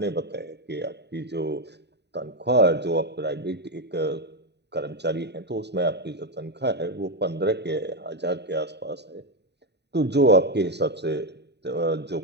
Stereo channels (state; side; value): late; left; 0.50 ms